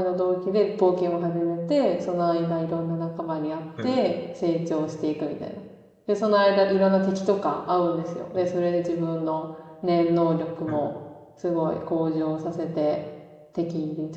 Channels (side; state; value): both; identical; correlation 1.00